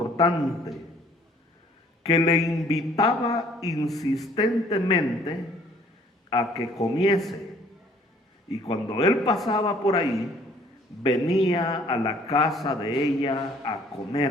que le invitaba insistentemente a que comiese. Y cuando él pasaba por ahí, venía a la casa de ella a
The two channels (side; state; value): both; normal; correlation 0.58